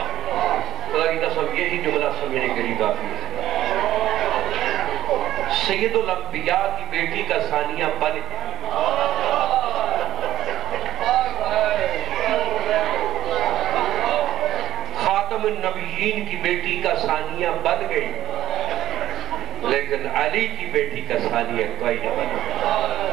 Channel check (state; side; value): quieter; left; 13.8 dB